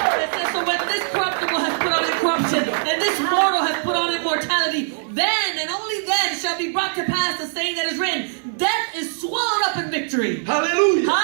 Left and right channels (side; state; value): left; silent; digital silence